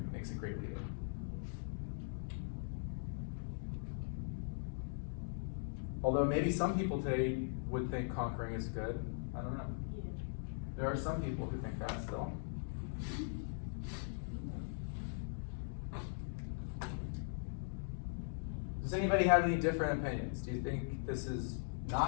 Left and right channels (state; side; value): silent; right; digital silence